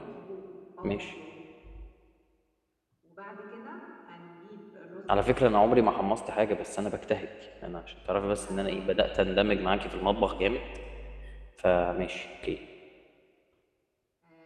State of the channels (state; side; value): identical; both; correlation 1.00